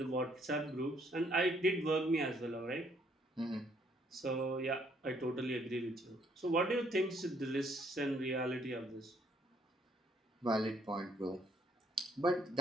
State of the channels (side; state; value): both; normal; correlation 0.67